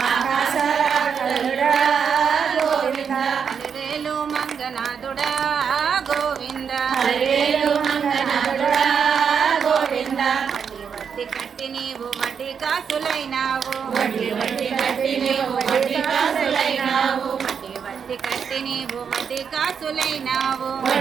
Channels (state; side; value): quieter; left; 6.9 dB